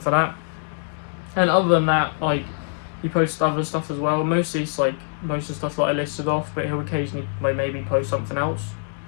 for that. And other than that, like, he posts other stuff as well. Mostly it's like most of the stuff that I listed off, but he'll occasionally maybe post something else.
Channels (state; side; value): silent; right; digital silence